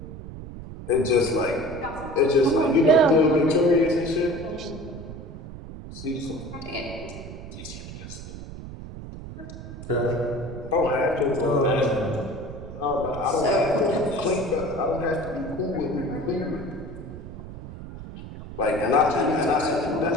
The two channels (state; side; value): noise; right; rumble, 12 dB below the sound